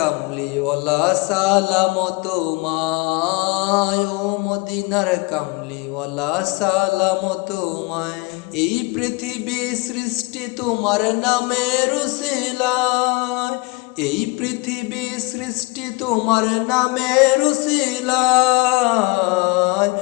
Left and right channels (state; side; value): quieter; right; 26.3 dB